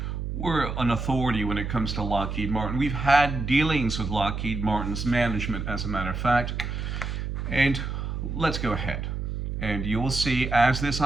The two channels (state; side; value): noise; right; hum, 4 dB below the sound